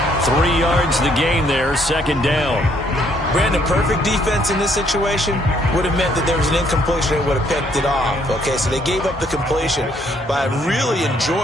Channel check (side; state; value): both; normal; correlation 0.68